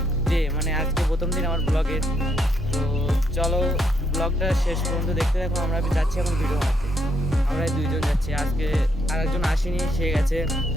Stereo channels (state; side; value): normal; both; correlation 0.75